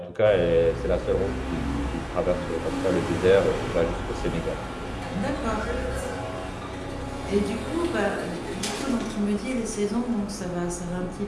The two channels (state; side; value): identical; both; correlation 1.00